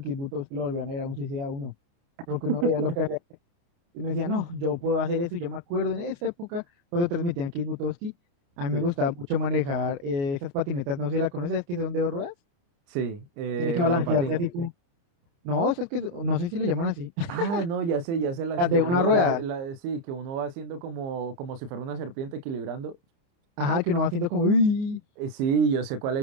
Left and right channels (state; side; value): late; left; 29 ms